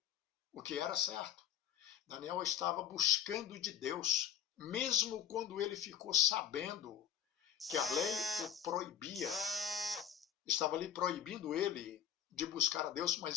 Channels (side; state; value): right; quieter; 9.2 dB